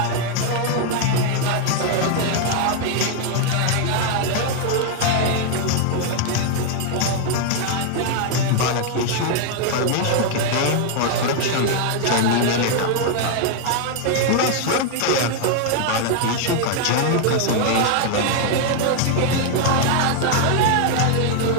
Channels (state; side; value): different; both; correlation 0.00